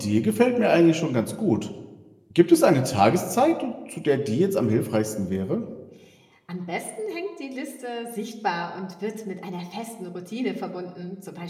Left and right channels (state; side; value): identical; both; correlation 1.00